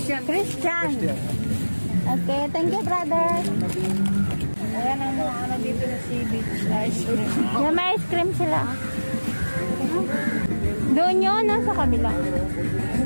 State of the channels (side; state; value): both; inverted; correlation -1.00